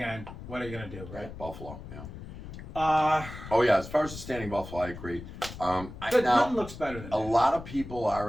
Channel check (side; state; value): left; noise; rumble, 12 dB below the sound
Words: what are you gonna do, right? Buffalo. Yeah. Uh, Oh yeah, as far as the standing Buffalo, I agree. Now nothing looks better than a that. lot of people